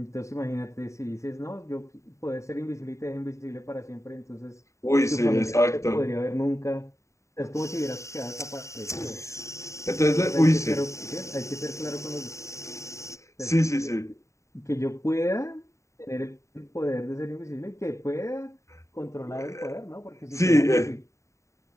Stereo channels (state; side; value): late; right; 0.14 ms